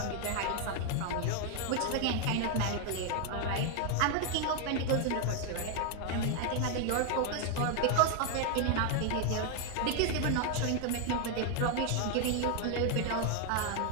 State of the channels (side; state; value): both; different; correlation 0.00